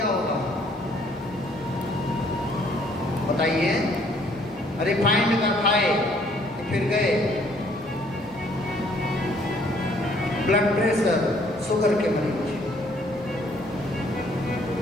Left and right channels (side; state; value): both; normal; correlation 0.62